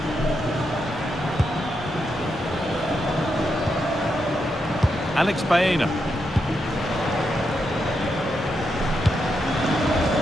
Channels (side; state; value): both; normal; correlation 0.83